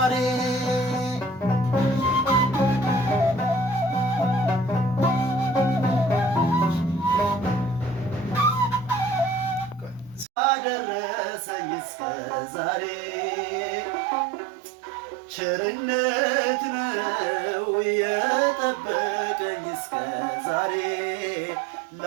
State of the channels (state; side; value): drops out; left; at 10.2 s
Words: ያደረሰኝ እስከ ዛሬ ቸርነት ነው የጠበቀኝ እስከ ዛሬ